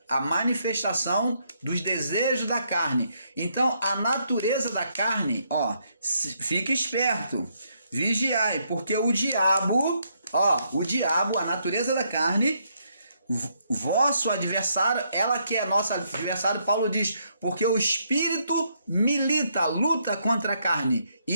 a manifestação dos desejos da carne. Então, a natureza da carne, ó, fique esperto, vigiai, porque o diabo, a natureza da carne, vosso adversário, ela que é nosso adversário, Paulo diz, porque o espírito milita, luta contra a carne,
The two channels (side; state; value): both; inverted; correlation -0.74